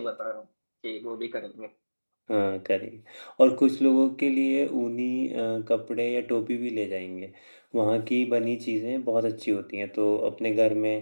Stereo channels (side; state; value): both; inverted; correlation -1.00